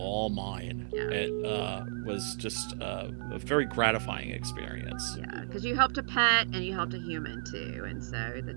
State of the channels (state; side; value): silent; left; digital silence